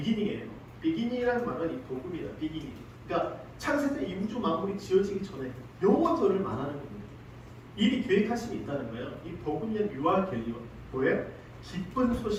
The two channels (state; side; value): identical; both; correlation 1.00